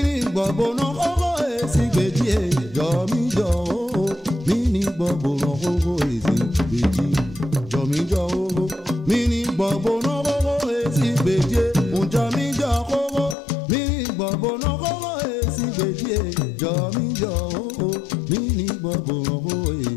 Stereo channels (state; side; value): drops out; right; at 13.4 s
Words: gbọ̀gbọ̀nà kókó èsì gbèjì jọ̀míjọ́ kókó mini gbọ̀gbọ̀nà kókó èsì gbèjì jọ̀míjọ́ kókó mini gbọ̀gbọ̀nà kókó èsì gbèjì ǹjọ́míjọ́ kókó mini gbọ̀gbọ̀nà kókó èsì gbèjì jọ̀míjọ́ kókó mini gbọ̀gbọ̀nà kókó